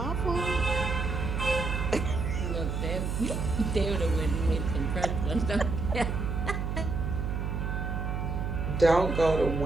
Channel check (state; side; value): noise; right; hum, 2 dB below the sound